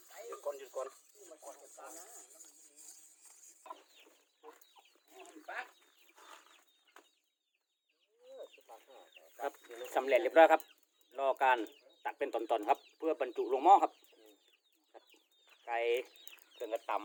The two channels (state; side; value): identical; both; correlation 1.00